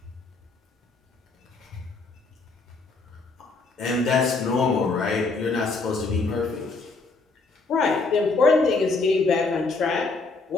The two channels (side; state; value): right; quieter; 3.8 dB